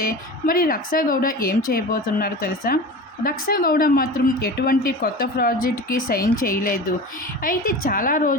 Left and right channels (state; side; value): normal; both; correlation 0.32